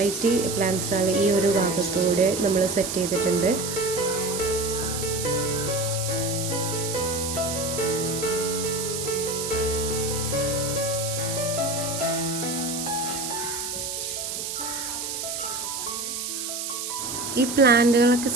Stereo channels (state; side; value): noise; right; hiss, 4 dB below the sound